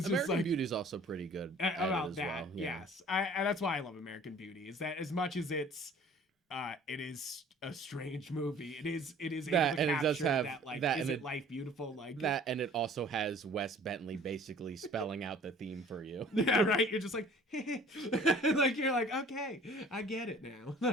American Beauty is also pretty good at about it as that. well. Yeah. Yes, and that's why I love American Beauty. Is that as much as it is a strange movie. It is that, able to and it does capture have that, like, that, is and it life beautiful? Like that, and it also has Wes Bentley basically spelling out the theme for you. Yeah, right. You're just like, like you're like, okay, I get it now.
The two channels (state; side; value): normal; both; correlation 0.50